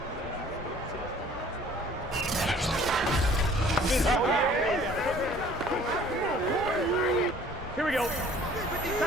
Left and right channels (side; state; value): both; normal; correlation 0.53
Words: Here we go.